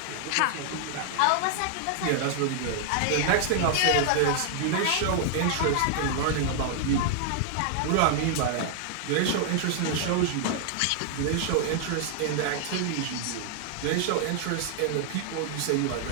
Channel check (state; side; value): different; both; correlation 0.00